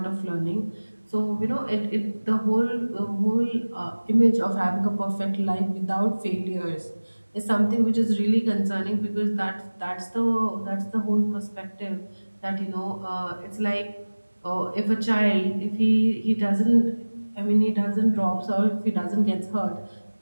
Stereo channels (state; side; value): inverted; both; correlation -1.00